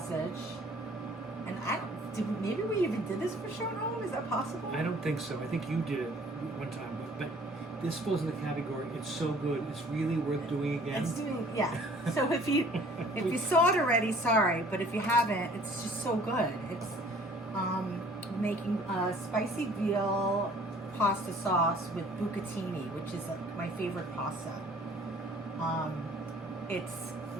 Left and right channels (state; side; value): normal; both; correlation 0.53